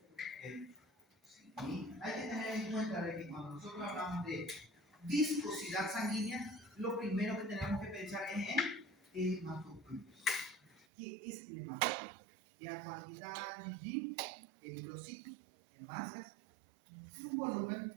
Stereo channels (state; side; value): drops out; left; at 10.9 s